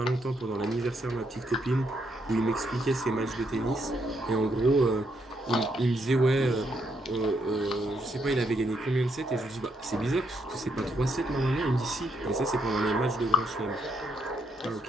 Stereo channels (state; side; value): normal; both; correlation 0.76